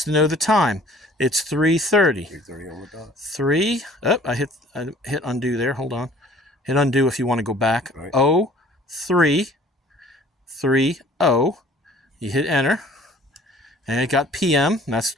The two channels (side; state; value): both; normal; correlation 0.52